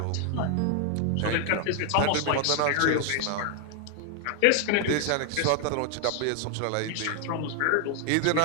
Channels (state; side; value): different; both; correlation 0.00